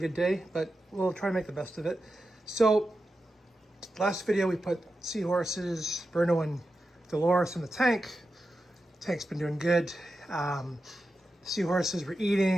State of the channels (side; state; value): both; normal; correlation 0.90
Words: day, but we'll try to make the best of it. So last video we put Seahorses, Bruno and Dolores in the tank. Tank's been doing good. Seahorses were